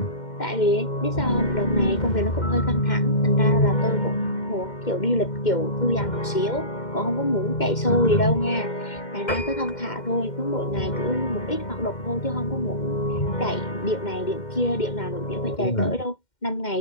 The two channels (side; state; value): right; late; 2.1 ms